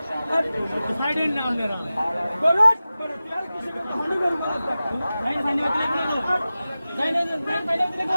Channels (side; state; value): both; inverted; correlation -0.96